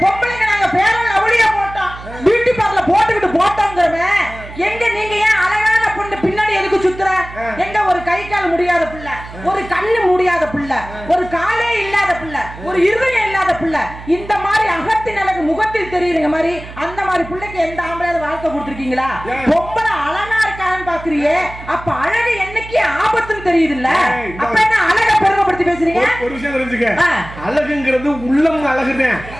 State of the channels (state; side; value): noise; right; hum, 15 dB below the sound